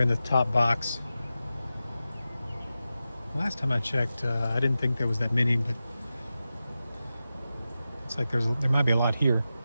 in the top box. Last time I checked, I didn't think there was that many, but looks like there might be a lot here.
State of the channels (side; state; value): both; inverted; correlation -0.93